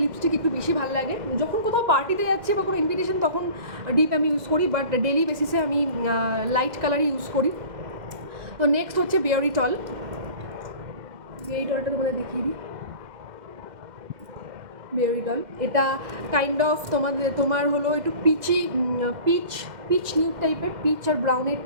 লিপস্টিক একটু বেশি ভালো লাগে। যখন কোথাও পার্টিতে যাচ্ছি বা কোনো ইনভিটেশন তখন ডিপ আমি ইউজ করি, বাট ডেলি বেসিসে আমি লাইট কালারই ইউজ করি। তো নেক্সট হচ্ছে বেয়ারিটল। বেয়ারিটলটা তোমাদের দেখিয়ে দিই। বেয়ারিটল এটা কাইন্ড অফ তোমার হলো একটু পিচ নিউড টাইপের, পিচ আর ব্রাউনের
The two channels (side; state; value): left; late; 2.1 ms